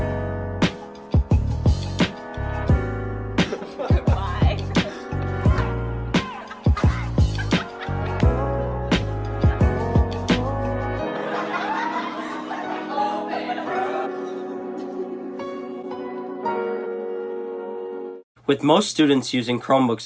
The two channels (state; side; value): identical; both; correlation 1.00